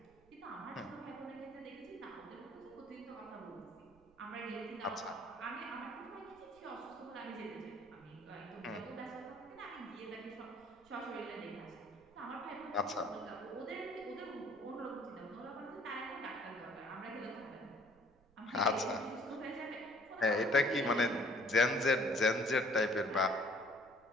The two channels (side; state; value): right; noise; rumble, 29 dB below the sound